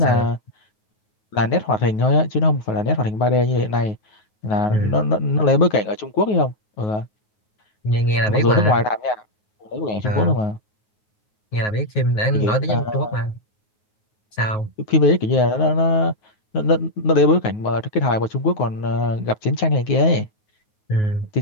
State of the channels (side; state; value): right; late; 9.4 ms